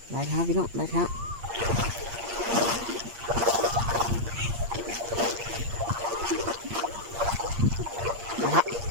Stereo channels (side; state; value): left; late; 8.6 ms